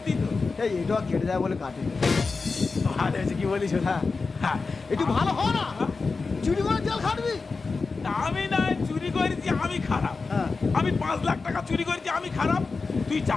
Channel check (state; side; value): quieter; right; 4.3 dB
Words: তো। এই এটা কেটে যায় বলে কাটি। ভালো হয়েছে, কি বলিস? হ্যাঁ, হ্যাঁ, একটু ভালো হয় না? চুরি করে জেল খাটবি? আমি না চুরি করেছি আমি খারাপ? হ্যাঁ। আমি 5 লাখ টাকা চুরি করেছি আমি খারাপ? তুই